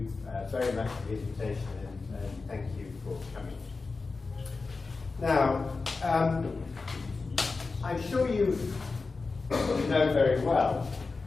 very much for the invitation, and thank you for coming. Now, I'm sure you know very well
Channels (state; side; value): quieter; right; 4.1 dB